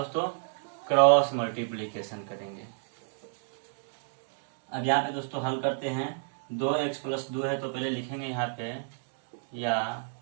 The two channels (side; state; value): left; silent; digital silence